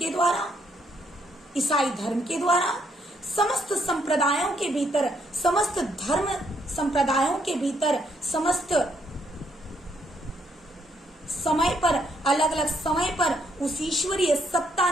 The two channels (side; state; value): both; normal; correlation 0.73